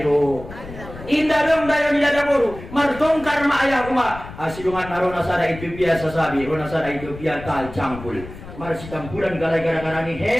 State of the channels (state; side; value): noise; left; rumble, 14 dB below the sound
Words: Indah dong dayo di dada buru. Martongkar ma ayah uma. Asidungan arona sada Ethiopia sasabi. Rona sada Ethiopia tal cangkul. Marsi campuran galai gara-gara ni